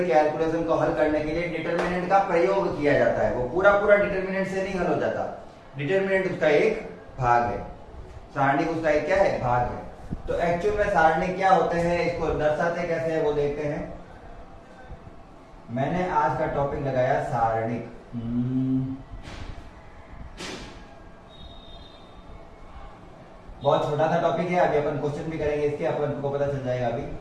कैलकुलेशन को हल करने के लिए डिटर्मिनेंट का प्रयोग किया जाता है। वो पूरा पूरा डिटर्मिनेंट से नहीं हल हो जाता, डिटर्मिनेंट उसका एक भाग है, सारणिक उसका एक क्या है, भाग है। तो एक्चुअल में सारणिक क्या होते हैं, इसको दर्शाते कैसे है वो देखते हैं। मैंने आज का टॉपिक लगाया सारणिक। बहुत छोटा सा टॉपिक है, अभी अपन क्वेश्चन भी करेंगे इसके, अपन को पता चल जाएगा। अभी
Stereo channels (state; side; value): identical; both; correlation 1.00